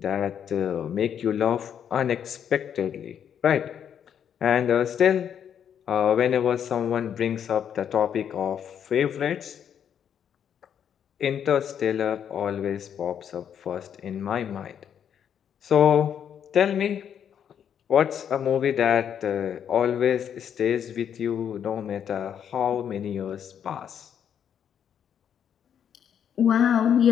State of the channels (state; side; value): quieter; right; 8.6 dB